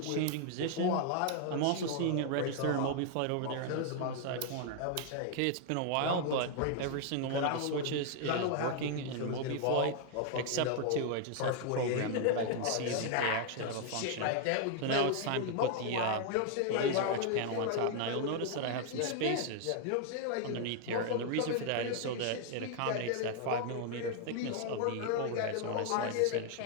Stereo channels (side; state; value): both; different; correlation 0.00